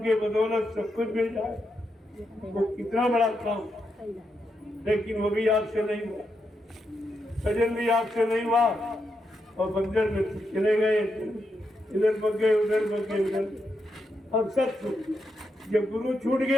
बदौलत सब कुछ मिल जाए, वो कितना बड़ा काम, लेकिन वो भी आपसे नहीं हुआ, भजन भी आपसे नहीं हुआ, और बंजर में कुछ चले गए, इधर बग गए, उधर बग गए, उधर। अब सब छूट गया। जब गुरु छूट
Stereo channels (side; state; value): both; normal; correlation 0.83